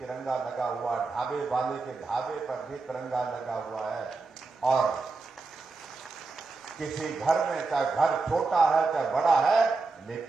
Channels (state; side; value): quieter; left; 3.9 dB